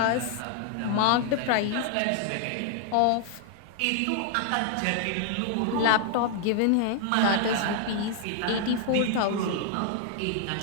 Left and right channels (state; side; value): different; both; correlation 0.00